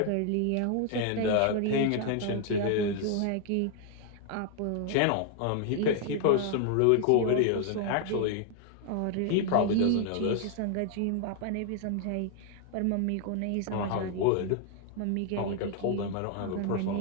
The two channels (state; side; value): different; both; correlation 0.00